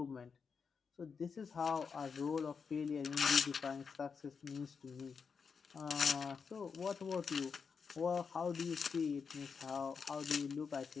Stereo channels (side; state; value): right; quieter; 5.7 dB